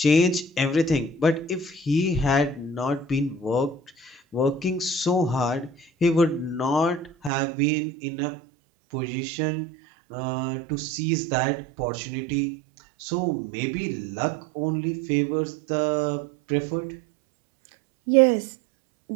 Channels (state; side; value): drops out; left; at 7.3 s